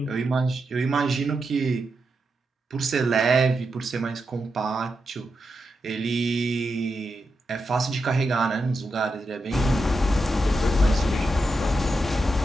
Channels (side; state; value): both; normal; correlation 0.87